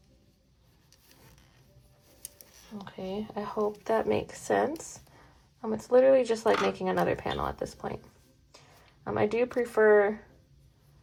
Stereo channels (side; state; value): both; identical; correlation 1.00